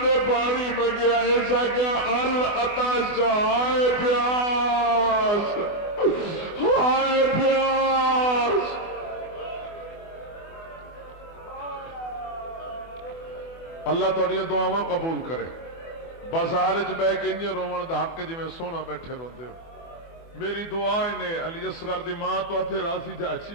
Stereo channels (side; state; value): right; late; 24 ms